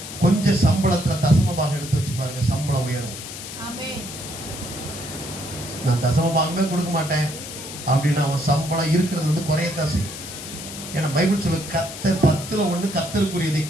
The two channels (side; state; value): left; noise; hiss, 10 dB below the sound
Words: கொஞ்சம் சம்பளத்துல தசமபாகம் எடுத்து வச்சு பாருங்க, சம்பளம் உயரும். நான் தசமபாகமே கொடுக்க மாட்டேன் அப்படின்னு அவன் சம்பளம் இருக்கிறது வந்து குறையத்தான் செய்யும். ஏன்னா பைபிள் சொல்ல கர்த்தர் 10ல் 1 கர்த்தருக்குரியதை